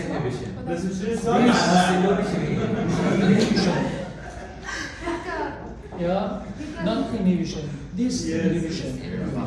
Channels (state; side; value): identical; both; correlation 1.00